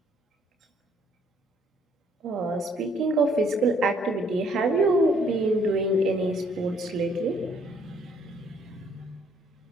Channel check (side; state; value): both; normal; correlation 0.65